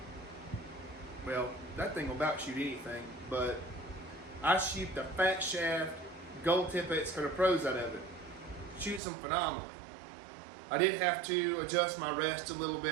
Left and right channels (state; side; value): drops out; left; at 9.0 s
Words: Well, that thing will about shoot anything, but I shoot the fat shaft Gold Tip X Cutter Pros out of it. Shoots them phenomenally. I did have to adjust my rest a little